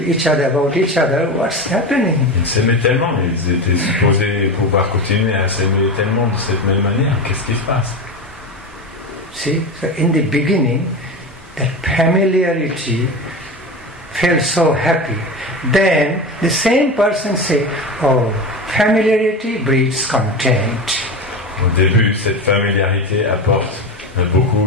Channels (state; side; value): normal; both; correlation 0.24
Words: about each other. What's happening? Ils s'aimaient tellement, ils étaient supposés pouvoir continuer à s'aimer tellement de cette même manière. Qu'est-ce qui se passe? See, so in the beginning, that familiarity felt so happy. Then the same person say, oh, familiarity breeds contempt. Au début, cette familiarité apporte